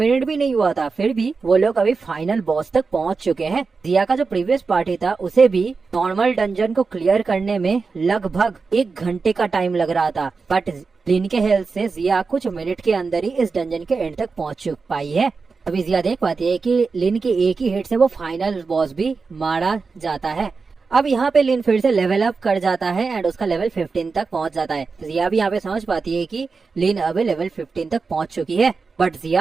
भी नहीं हुआ था, फिर भी वो लोग अभी फाइनल बॉस तक पहुँच चुके हैं। जिया का जो प्रीवियस पार्टी था उसे भी नॉर्मल डंजन को क्लियर करने में लगभग 1 घंटे का टाइम लग रहा था, बट लिन के हेल्प से जिया कुछ मिनट के अंदर ही इस डंजन के एंड तक पहुँच पाई है। अभी जिया देख पाती है कि लिन के एक ही हिट से वो फाइनल बॉस भी मारा जाता है। अब यहाँ पे लिन फिर से लेवल अप कर जाता है एंड उसका लेवल 15 तक पहुँच जाता है। जिया भी यहाँ पे समझ पाती है कि लिन अब लेवल 15 तक पहुँच चुकी है, बट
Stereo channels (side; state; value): left; quieter; 4.6 dB